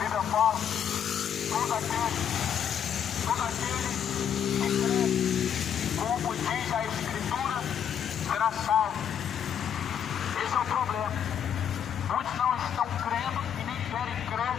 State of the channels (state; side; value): quieter; right; 8.6 dB